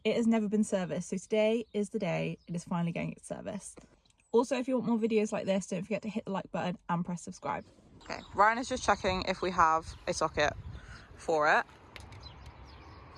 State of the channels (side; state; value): both; identical; correlation 1.00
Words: it has never been serviced, so today is the day it is finally getting its service. Also, if you want more videos like this, don't forget to hit the like button and press subscribe. Okay, Ryan is just checking if we have a socket for it.